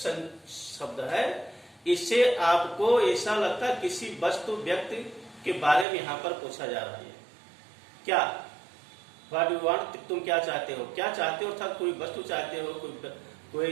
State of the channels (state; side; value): drops out; left; at 5.9 s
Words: है, इससे आपको ऐसा लगता है किसी वस्तु व्यक्ति के बारे में यहाँ पर पूछा जा रहा है। क्या व्हाट यू वांट, तुम क्या चाहते हो, क्या चाहते हो, अर्थात कोई वस्तु चाहते हो,